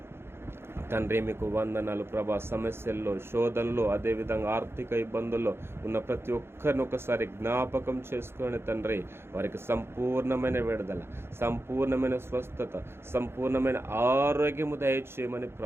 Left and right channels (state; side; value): late; left; 0.12 ms